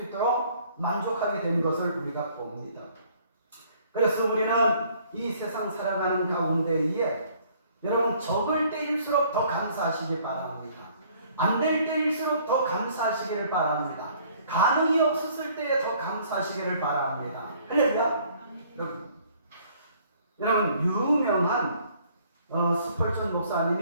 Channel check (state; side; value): inverted; both; correlation -0.59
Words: 만족하게 된 것을 우리가 봅니다. 그래서 우리는 이 세상 살아가는 가운데에 여러분 적을 때일수록 더 감사하시기 바랍니다. 안 될 때일수록 더 감사하시기를 바랍니다. 가능이 없었을 때에 더 감사하시기를 바랍니다. 할렐루야. 여러분 유명한 스펄전